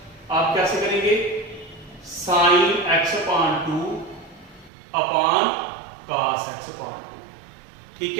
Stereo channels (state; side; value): drops out; left; at 4.7 s